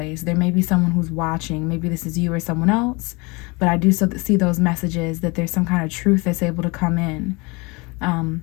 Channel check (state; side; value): quieter; right; 27.0 dB